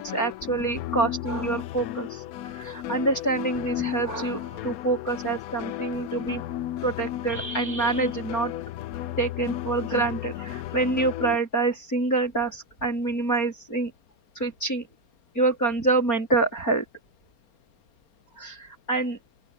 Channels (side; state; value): right; late; 4.3 ms